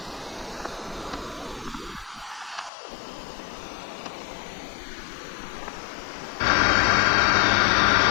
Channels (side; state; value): right; drops out; at 2.7 s